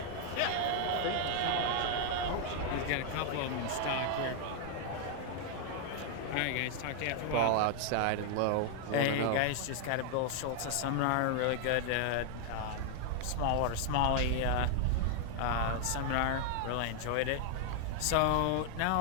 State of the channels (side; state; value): both; different; correlation 0.00